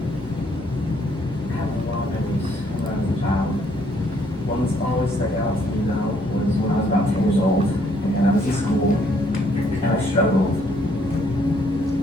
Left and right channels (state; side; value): normal; both; correlation 0.67